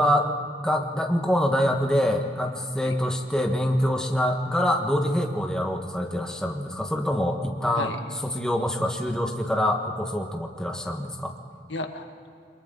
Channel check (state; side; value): normal; both; correlation 0.77